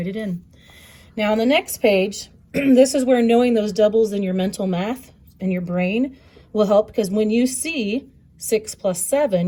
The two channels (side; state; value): both; identical; correlation 1.00